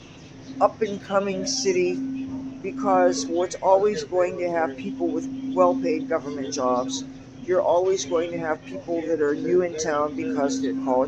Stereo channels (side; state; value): both; identical; correlation 1.00